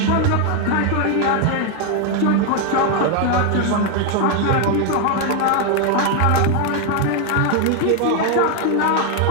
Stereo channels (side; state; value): both; different; correlation 0.01